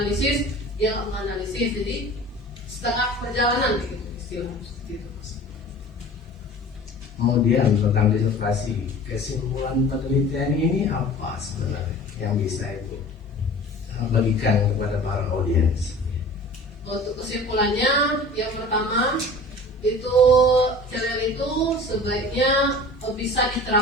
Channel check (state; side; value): normal; both; correlation 0.42